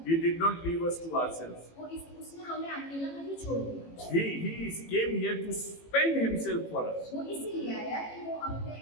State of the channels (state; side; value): late; right; 18 ms